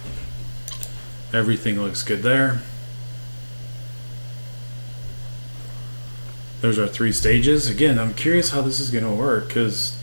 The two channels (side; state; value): both; inverted; correlation -1.00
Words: Everything looks good there. There's our 3 stages. Again, I'm curious how this is going to work because